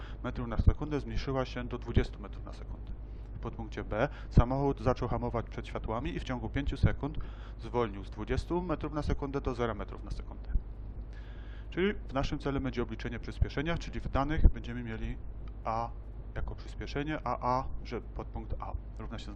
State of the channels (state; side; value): identical; both; correlation 1.00